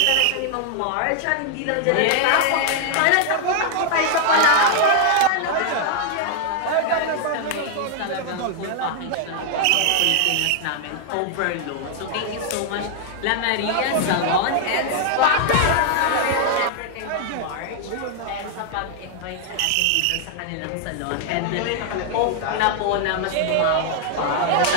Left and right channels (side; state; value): both; different; correlation 0.00